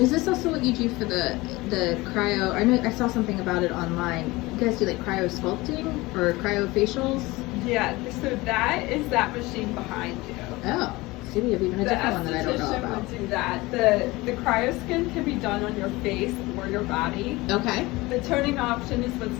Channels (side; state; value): right; quieter; 21.3 dB